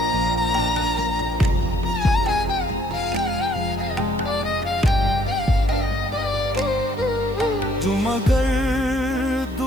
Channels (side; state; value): right; noise; hiss, 27 dB below the sound